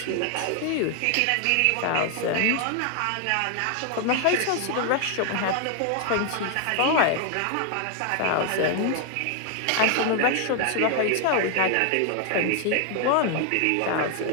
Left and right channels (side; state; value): both; different; correlation 0.00